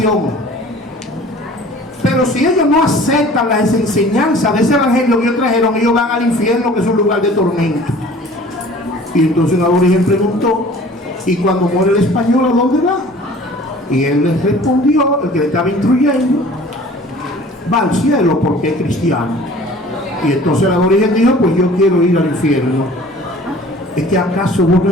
Pero si ellos no aceptan las enseñanzas de ese evangelio que ellos trajeron, ellos van al infierno, que es un lugar de tormento. Y entonces un aborigen preguntó, ¿y cuando muere el español a dónde va? Y él les respondió, el que le estaba instruyendo, va al cielo porque es cristiano. Y entonces el aborigen dijo, pues yo quiero ir al infierno. ¿Es que acaso vos no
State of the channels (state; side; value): normal; both; correlation 0.47